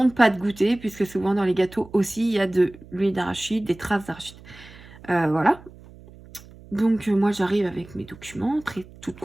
pas de goûter, puisque souvent dans les gâteaux aussi, il y a de l'huile d'arachide, des traces d'arachide. Voilà. Donc, moi, j'arrive avec mes documents, toute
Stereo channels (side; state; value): right; noise; hum, 21 dB below the sound